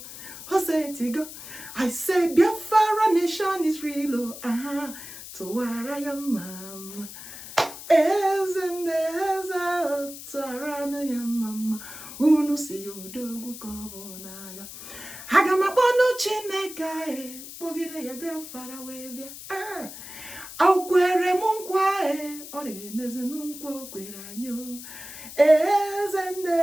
Hosetigo. I say Biafra nation is real. Tuwara ya mama. Eze tuwara ya mama. Unu si yodogu kobonaga. Hagamabonu Chineke. Bogide ya Biafra webia. Aukwere munkwa Ore mezi nunkwa kwere anyo. Eze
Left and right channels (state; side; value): noise; left; hiss, 13 dB below the sound